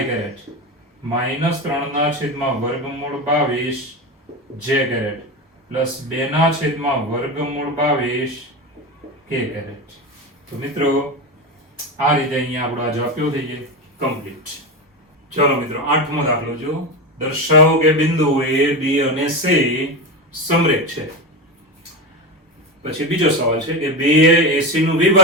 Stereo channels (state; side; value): normal; both; correlation 0.19